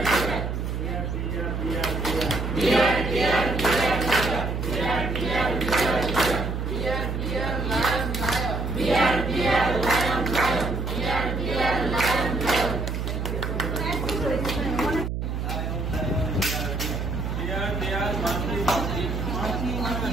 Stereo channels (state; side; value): noise; right; hum, 2 dB below the sound